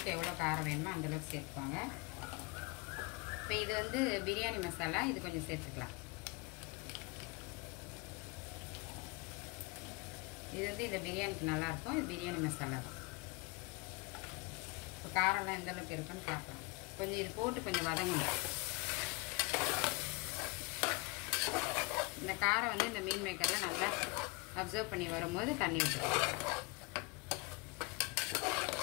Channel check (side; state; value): right; quieter; 26.6 dB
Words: எவ்வளோ காரம் வேணுமோ அந்தளவுக்கு சேர்த்துக்கோங்க. இப்போ இது வந்து பிரியாணி மசாலா, இது கொஞ்சம் சேர்த்துக்கலாம். இது வந்து இந்த பிரியாணிக்கு நல்லாயிருக்கும். இது பிரியாணி மசாலா தான். இப்போ காரம்லாம் எந்த அளவுக்கு இருக்குன்னு பார்க்கலாம். கொஞ்சம் இது போட்டு கொஞ்சம் வதங்கணும். இந்த காரம் வந்து இந்த மீன் மேக்கரில் நல்லா அப்சர்வ் பண்ணி வரும்போது தண்ணி விட்டுக்கலாம்.